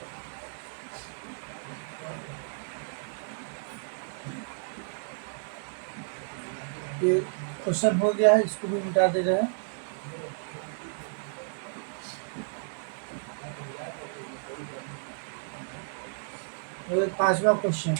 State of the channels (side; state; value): left; silent; digital silence